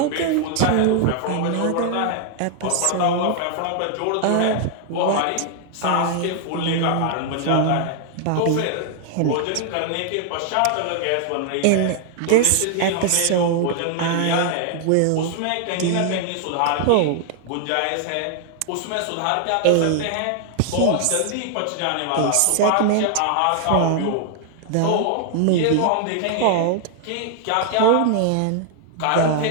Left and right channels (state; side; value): different; both; correlation 0.00